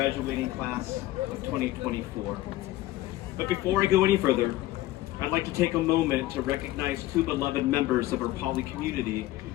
class of 2024. But before I go any further, I'd like to take a moment to recognize two beloved members of our Poly community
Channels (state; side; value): quieter; right; 16.2 dB